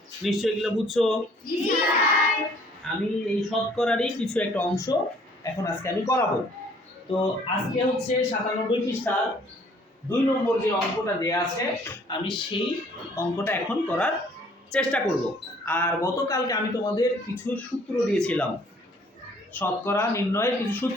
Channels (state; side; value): normal; both; correlation 0.59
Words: নিশ্চয়ই এগুলো বুঝছো? আমি এই শতকরারই কিছু একটা অংশ এখন আজকে আমি করাবো। তো আজকে হচ্ছে 97 পৃষ্ঠার 2 নম্বর যে অঙ্কটা দেয়া আছে, আমি সেই অঙ্কটা এখন করার চেষ্টা করব। আর গতকালকে আমি তোমাদের কিছু সূত্র দিয়েছিলাম, শতকরা নির্ণয়ের কিছু